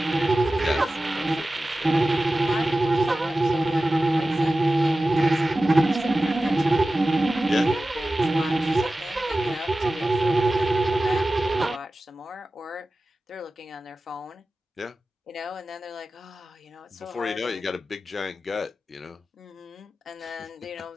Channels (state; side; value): normal; both; correlation 0.95